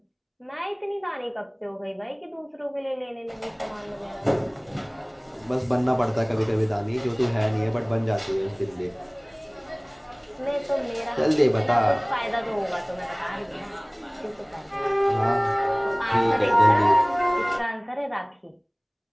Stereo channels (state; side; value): identical; both; correlation 1.00